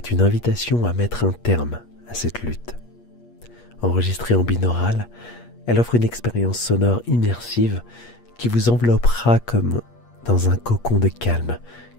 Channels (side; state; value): right; late; 8.5 ms